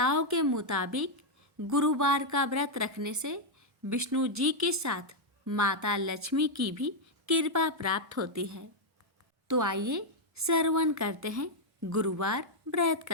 के मुताबिक गुरुवार का व्रत रखने से विष्णु जी के साथ माता लक्ष्मी की भी कृपा प्राप्त होती है। तो आइए श्रवण करते हैं गुरुवार व्रत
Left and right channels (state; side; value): normal; both; correlation -0.01